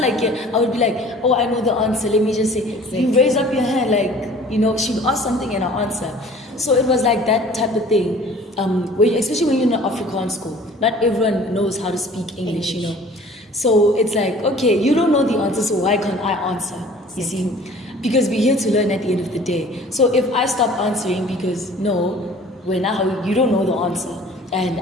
I would be like, oh, I know the answer, let me just say, you raise up your hand, like, she would ask something and I answer. So it was like that type of thing, especially when you're in an Afrikaans school. Not everyone knows how to speak English. So it's like, okay, you don't know the answer, so why can't I answer? You see? Because we're here to learn at the end of the day. So if I stop answering because, no, you don't know the answer, and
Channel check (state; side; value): normal; both; correlation 0.49